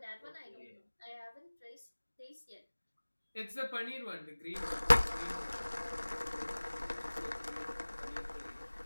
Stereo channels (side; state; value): both; inverted; correlation -1.00